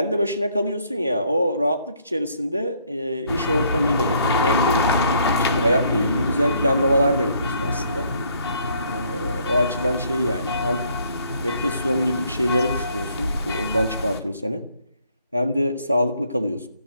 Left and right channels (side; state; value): both; inverted; correlation -0.66